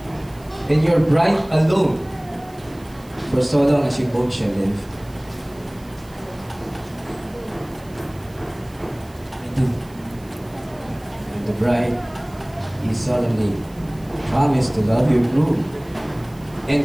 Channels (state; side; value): noise; right; hiss, 26 dB below the sound